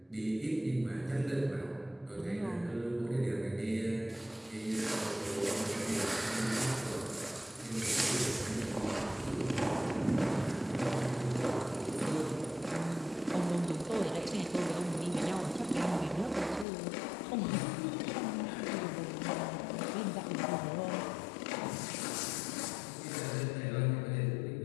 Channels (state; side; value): drops out; right; at 16.7 s